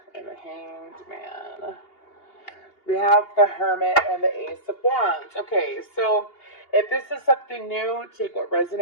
And the Hanged Man. We have the Hermit and the Ace of Wands. Okay, so if this is something new, take what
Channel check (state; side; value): late; right; 2.8 ms